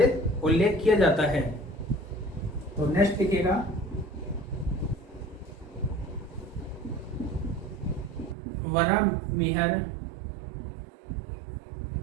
उल्लेख किया जाता है। तो नेक्स्ट लिखिएगा बरामीर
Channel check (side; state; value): left; drops out; at 8.3 s